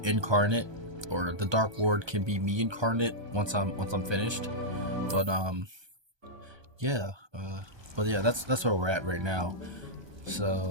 incarnate, or the Dark Lord can be me incarnate once I'm finished. But yeah, but yeah, that's where we're at right now.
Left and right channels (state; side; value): late; left; 1.2 ms